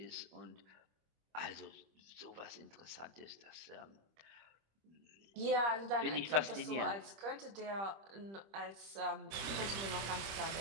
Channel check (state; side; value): late; left; 25 ms